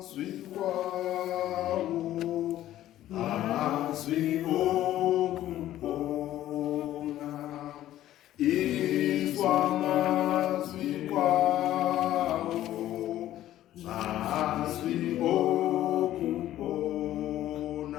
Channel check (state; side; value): quieter; right; 13.3 dB